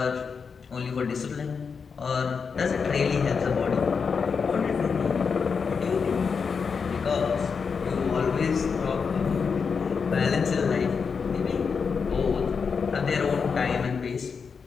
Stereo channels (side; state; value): right; quieter; 5.7 dB